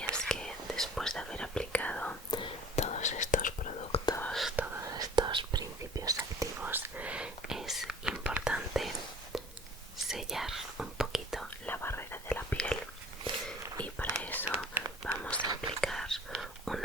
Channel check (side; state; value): both; normal; correlation 0.47